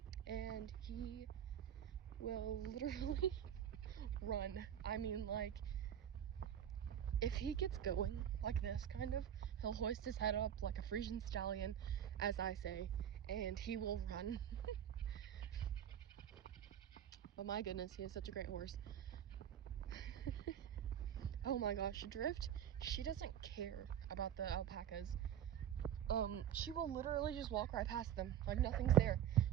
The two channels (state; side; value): quieter; left; 9.8 dB